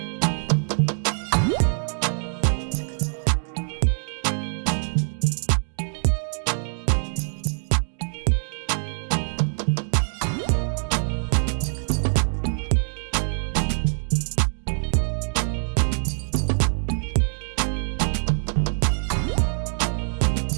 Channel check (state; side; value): silent; left; digital silence